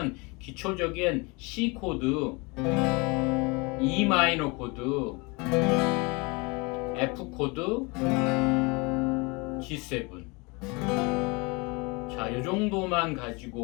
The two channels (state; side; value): quieter; right; 27.9 dB